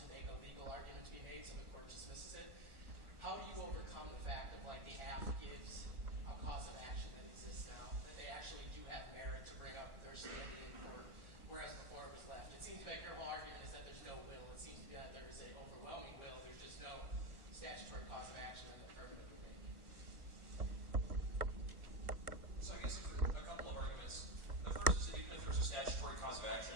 make a legal argument to be made, so the court dismisses it. How do you overcome the fact that the AF gives a cause of action that exists now, that they actually do have merit to bring up their standing in court, whereas before it was left? It seems to be like your whole argument is that there's no will. It seems to be like there is an overwhelming will. There's just no statutory cause of action that the affirmative would make. So I guess a couple of arguments. The first is that even if there's a statutory cause of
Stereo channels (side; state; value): left; late; 1.3 ms